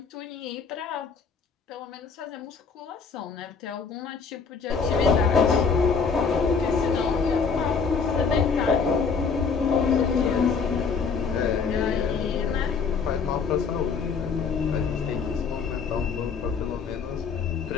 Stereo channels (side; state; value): right; quieter; 5.5 dB